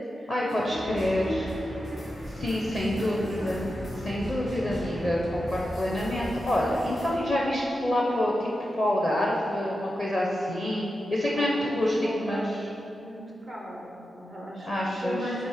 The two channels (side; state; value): both; normal; correlation 0.90